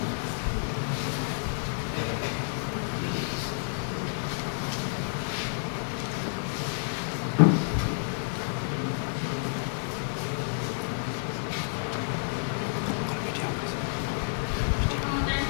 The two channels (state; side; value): silent; right; digital silence